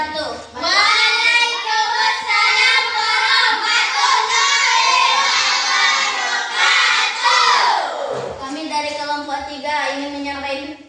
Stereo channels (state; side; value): identical; both; correlation 1.00